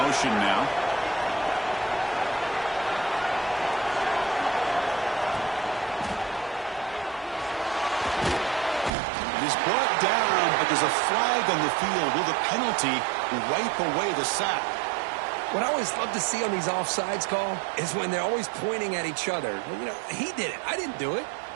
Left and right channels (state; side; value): drops out; left; at 8.9 s